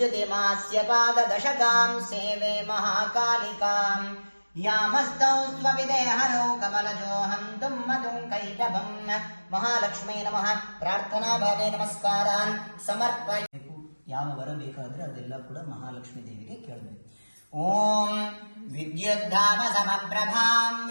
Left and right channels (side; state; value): both; inverted; correlation -1.00